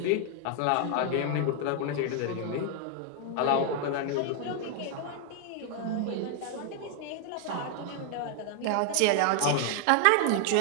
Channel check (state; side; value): different; both; correlation 0.00